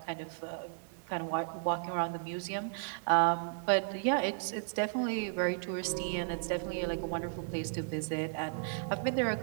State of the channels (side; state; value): left; silent; 55 dB below the other